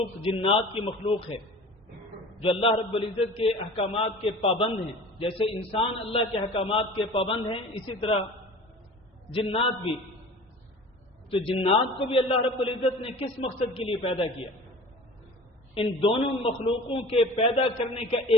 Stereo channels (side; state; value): both; normal; correlation 0.41